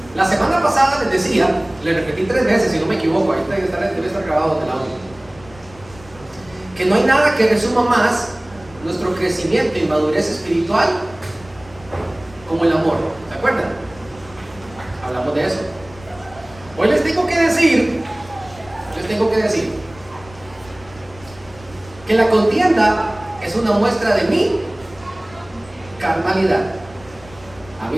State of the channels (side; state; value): left; noise; rumble, 22 dB below the sound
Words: La semana pasada les decía, le repetí 3 veces, si no me equivoco, ahí debe estar grabado en el audio, que no hay nada que resuma más nuestro crecimiento y madurez espiritual como el amor. ¿Se acuerdan? Hablamos de eso. Hoy les tengo que decir que la contienda es una muestra de mi carnalidad. A